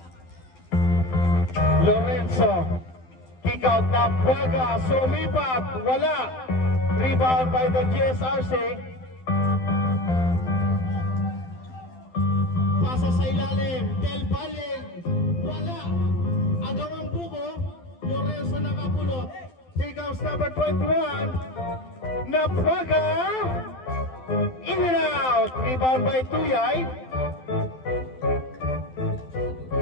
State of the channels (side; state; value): right; late; 12 ms